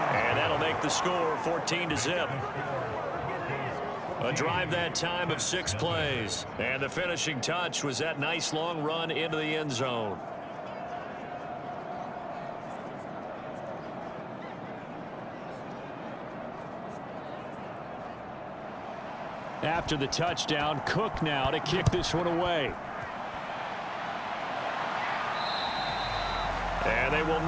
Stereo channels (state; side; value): identical; both; correlation 1.00